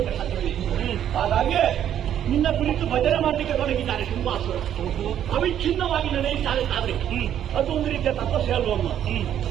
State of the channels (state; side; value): quieter; left; 10.3 dB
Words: ಸಾಧ್ಯವಿದೆ ಹಾಗಾಗಿ ನಿನ್ನ ಕುರಿತು ಭಜನೆ ಮಾಡಲಿಕ್ಕೆ ತೊಡಗಿದ್ದಾರೆ ಶುಂಭಾಸುರ ಅವಿಚ್ಛಿನ್ನವಾಗಿ ನಡೆಯುತ್ತಾರೆ ತಾದ್ರೆ ಅದು ಒಂದು ರೀತಿಯ ತಪಸ್ಸೆ ಅಲ್ವಮ್ಮ